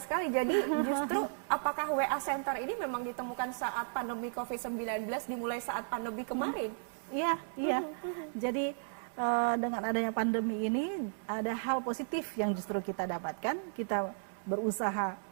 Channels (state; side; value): silent; left; digital silence